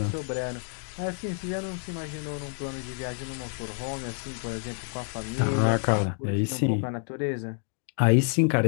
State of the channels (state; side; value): silent; right; 58 dB below the other